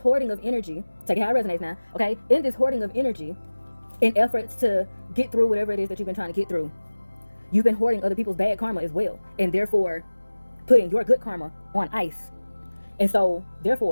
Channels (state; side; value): inverted; both; correlation -1.00